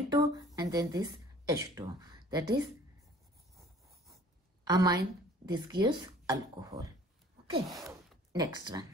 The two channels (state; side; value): normal; both; correlation 0.51